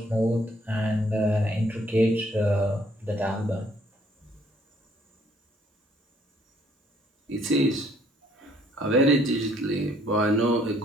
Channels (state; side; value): normal; both; correlation 0.64